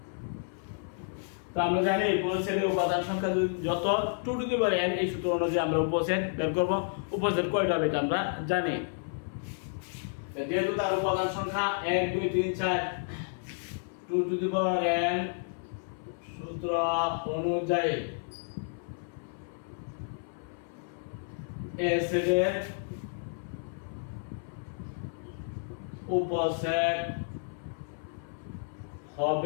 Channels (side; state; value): right; silent; 57 dB below the other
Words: তো আমরা জানি উপসেটের উপাদান সংখ্যা যত 2 টু দি পাওয়ার n, এই সূত্র অনুযায়ী আমরা উপসেট বের করব। উপসেট কয়টা হবে এটা আমরা জানি। যেহেতু তার উপাদান সংখ্যা 1 2 3 4, 2 টু দি পাওয়ার n সূত্র অনুযায়ী a সেটের উপসেট